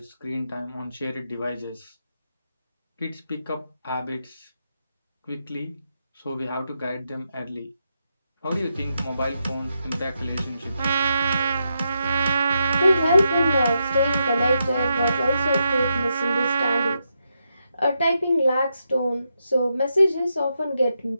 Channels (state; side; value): inverted; both; correlation -0.84